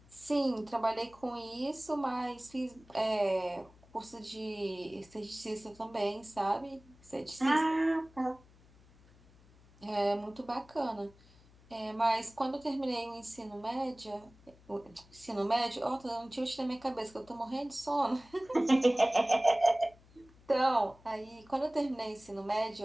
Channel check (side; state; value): left; noise; hum, 26 dB below the sound